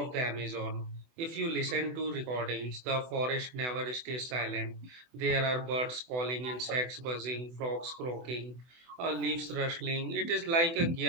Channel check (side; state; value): left; late; 24 ms